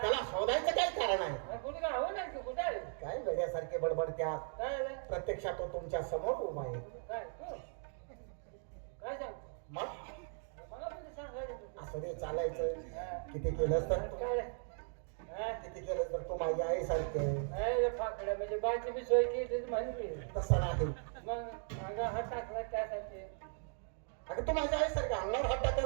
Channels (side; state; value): left; silent; 52 dB below the other